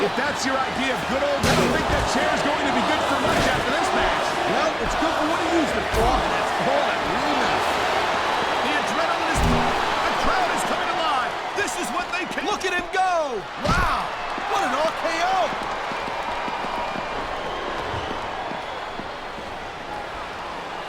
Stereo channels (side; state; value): both; identical; correlation 1.00